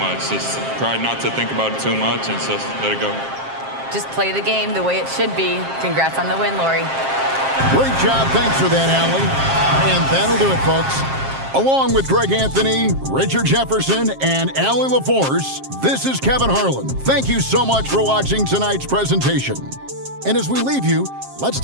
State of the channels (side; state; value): left; late; 7.5 ms